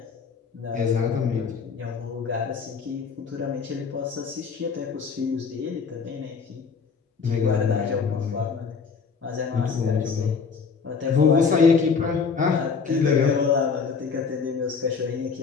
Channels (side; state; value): right; quieter; 5.5 dB